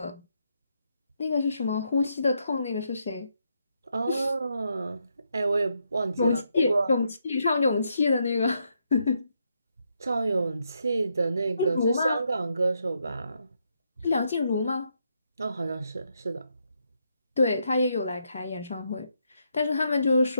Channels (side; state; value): both; inverted; correlation -0.79